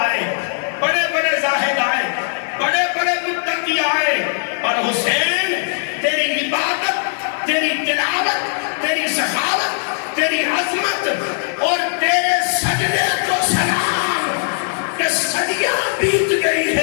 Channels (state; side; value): silent; right; 59 dB below the other